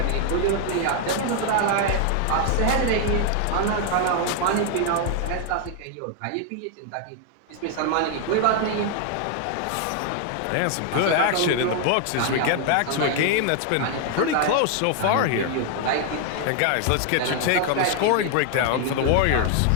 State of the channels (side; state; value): both; different; correlation 0.00